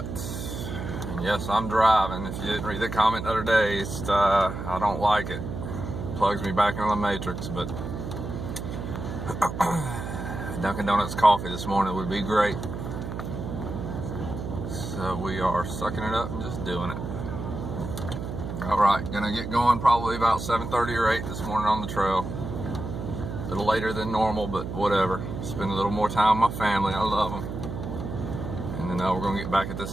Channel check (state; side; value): noise; right; hum, 6 dB below the sound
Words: And yes, I'm driving. If you didn't read the comment the other day, I don't like it. Plugs me back into the matrix, but Dunkin' Donuts coffee this morning would be great. So we are sucking it up and just doing it. Alright, gonna get going probably about 7:30 or 8 this morning on the trail. A little later than normal, but whatever. Spend a little more time with my family. I love them. And then we're gonna get back at this